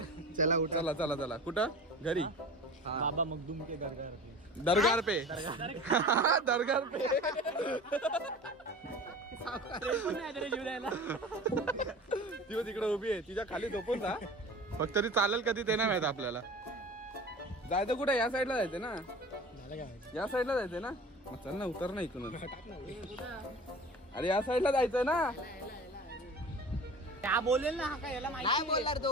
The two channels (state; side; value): normal; both; correlation 0.38